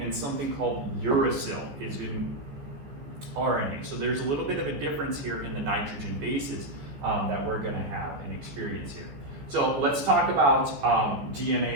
and something called uracil is in RNA. So there's a little bit of a difference here in the nitrogen bases that we're going to have and experience here. So let's talk about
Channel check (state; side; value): late; left; 14 ms